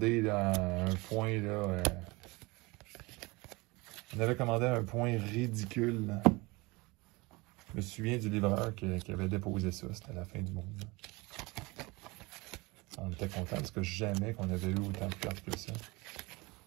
là, un point, là, on avait commandé un point ridicule. Là. Je me souviens du livreur qui avait déposé ça. C'était la fin du monde. Là. On était contents parce que jamais qu'on avait eu autant de cartes que ça.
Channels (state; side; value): quieter; left; 24.3 dB